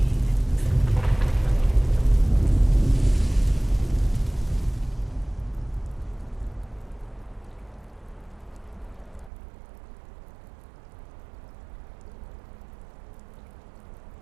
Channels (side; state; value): left; drops out; at 9.3 s